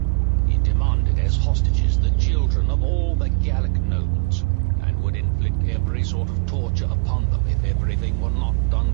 He demanded as hostages the children of all the Gallic nobles, and would inflict every sort of torture upon them if everything were not done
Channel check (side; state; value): left; quieter; 29.7 dB